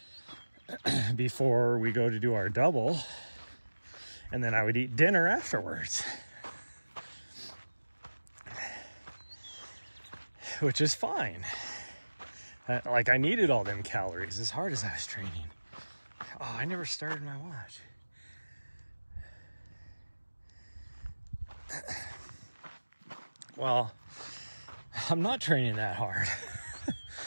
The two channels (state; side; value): inverted; both; correlation -1.00